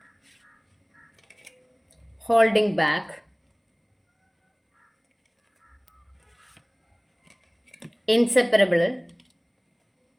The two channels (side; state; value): both; identical; correlation 1.00